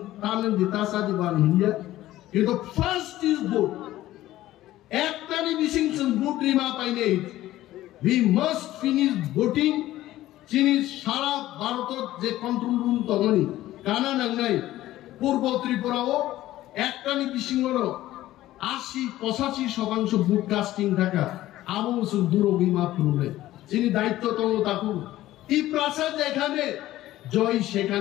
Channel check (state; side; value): quieter; right; 15.0 dB